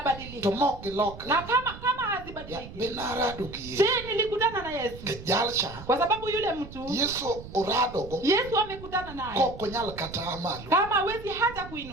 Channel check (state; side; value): noise; right; rumble, 14 dB below the sound